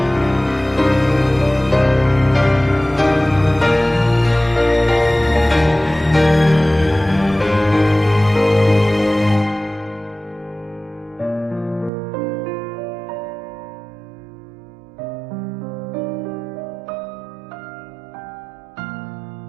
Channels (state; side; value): drops out; left; at 11.9 s